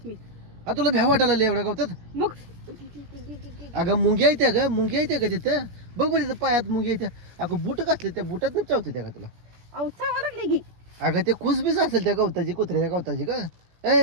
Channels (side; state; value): left; late; 17 ms